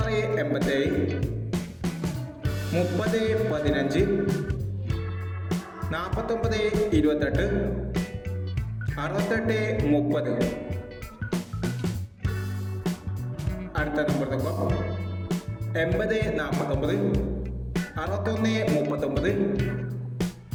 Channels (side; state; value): both; identical; correlation 1.00